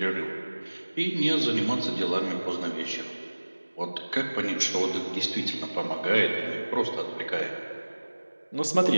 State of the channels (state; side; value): inverted; both; correlation -1.00